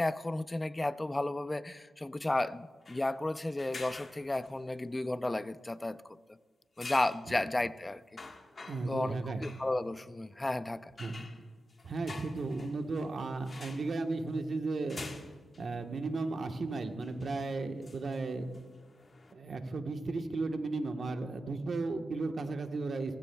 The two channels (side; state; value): both; normal; correlation 0.93